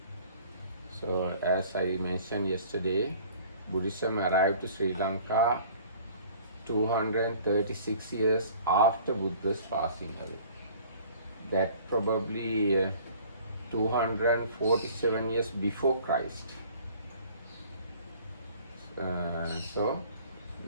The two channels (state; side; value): inverted; both; correlation -0.50